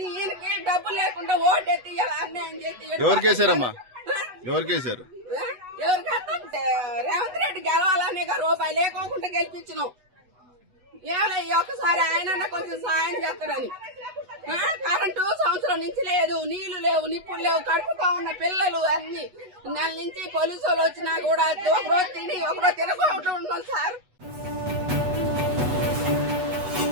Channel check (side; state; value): left; late; 8.1 ms